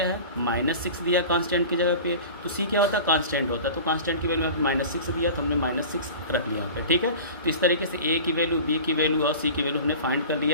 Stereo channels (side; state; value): both; inverted; correlation -0.37